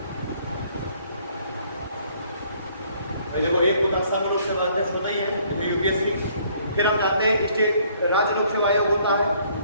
देखो एक होता संघ लोक सेवा अध्यक्ष होता ही है यूपीएससी, फिर हम जानते हैं स्टेट राज्य लोक सेवा आयोग होता है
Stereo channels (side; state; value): both; inverted; correlation -0.63